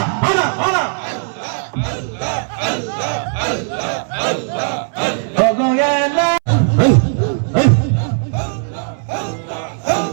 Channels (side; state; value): left; silent; 66 dB below the other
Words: আনা আনা ও গো এলাহি